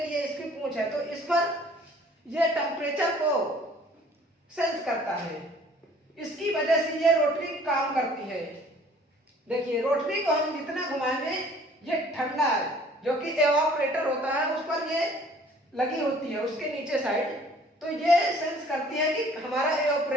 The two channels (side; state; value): both; normal; correlation 0.54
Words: कि ये इसकी पूंछ है, तो इस पर ये टेम्परेचर को सेंस करता है, इसकी वजह से ये रोटरी काम करती है। देखिए रोटरी को हम जितना घुमाएंगे ये ठंडा है, जो कि एवापोरेटर होता है उस पर ये लगी होती है उसके नीचे साइड, तो ये सेंस करती है कि हमारा